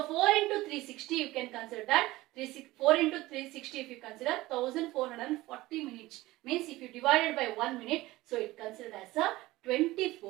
4 into 360, you can consider that. 4 into 360, if you consider 1440 minutes. Means if you divide it by 1 minute, so it considered as a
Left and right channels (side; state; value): left; quieter; 18.4 dB